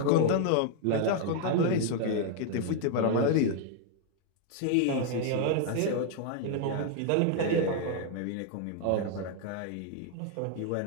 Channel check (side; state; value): both; different; correlation 0.00